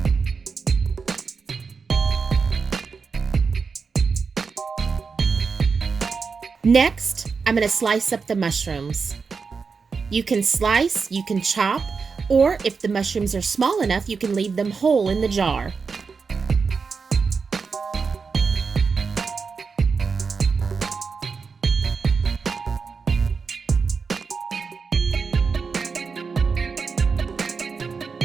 Next, I'm going to slice up the mushrooms. You can slice, you can chop, or if the mushrooms are small enough, you can leave them whole in the jar.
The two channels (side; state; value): left; quieter; 5.1 dB